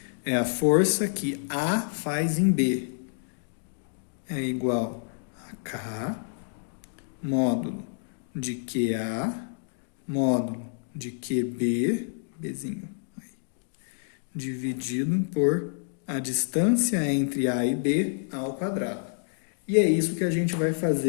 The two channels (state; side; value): silent; right; digital silence